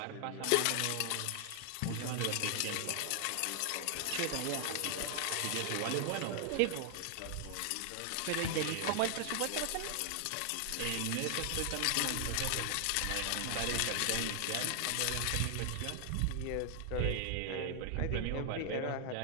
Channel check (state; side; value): different; both; correlation 0.00